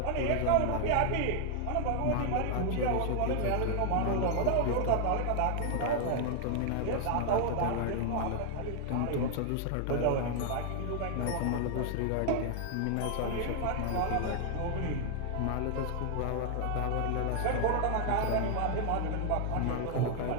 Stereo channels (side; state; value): both; different; correlation 0.00